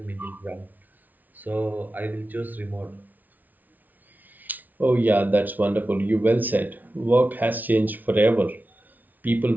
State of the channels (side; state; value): left; late; 0.080 ms